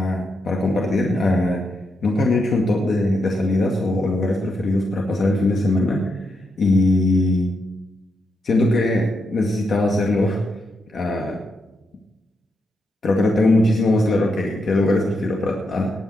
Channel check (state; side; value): normal; both; correlation 0.83